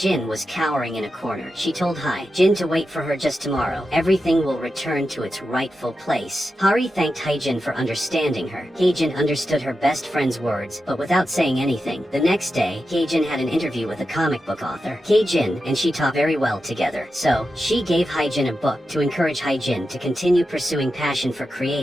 was cowering in a corner. She told Hae-jin to wait for her just tomorrow. Everything will return to its rightful place. Hari thanked Hae-jin for understanding her. Hae-jin understood her best friend's words, but without saying anything. The next day, Hae-jin had an interview with a comic book author. Hae-jin and she talked very well together, so she gave Hae-jin a book to encourage Hae-jin to continue pursuing passion for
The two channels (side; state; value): both; normal; correlation 0.90